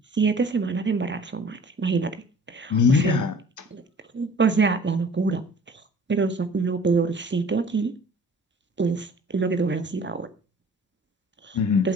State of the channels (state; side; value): normal; both; correlation 0.48